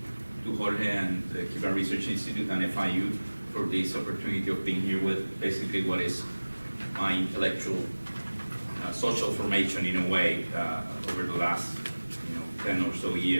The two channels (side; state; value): both; inverted; correlation -1.00